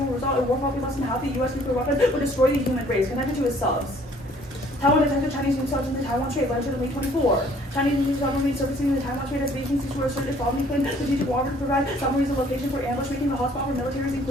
in war probably less than half the U.S. nuclear weapons would destroy the human race, connected to its subs. Taiwan detected Chinese nuke subs in the Taiwan Strait, later May 24. Chinese nuke submarines surfacing in the Taiwan Strait as Beijing seeks to assert its sovereignty claim strategic water to provide submarines a location for ambush, making the hotspot for militaries,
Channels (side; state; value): both; normal; correlation 0.58